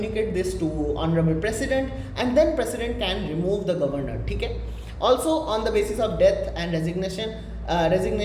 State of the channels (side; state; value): both; identical; correlation 1.00